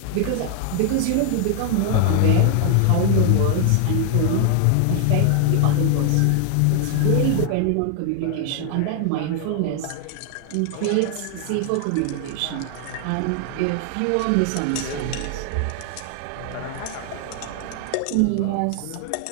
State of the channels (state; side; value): different; both; correlation 0.00